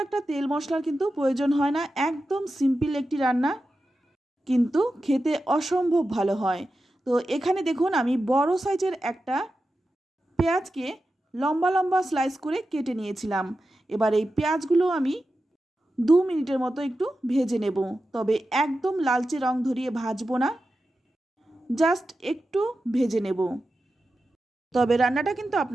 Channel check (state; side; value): normal; both; correlation 0.91